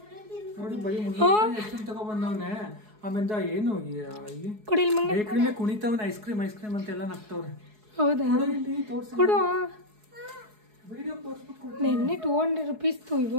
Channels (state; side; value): late; left; 4.7 ms